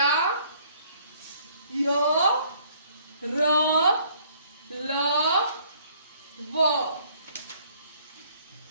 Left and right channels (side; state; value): both; inverted; correlation -0.60